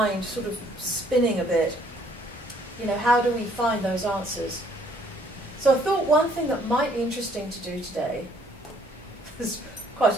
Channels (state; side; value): normal; both; correlation 0.63